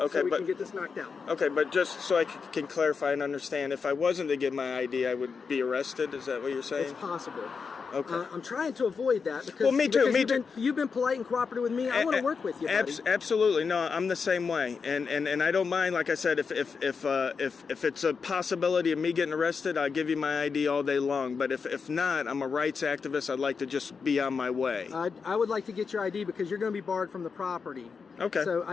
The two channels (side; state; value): right; quieter; 5.4 dB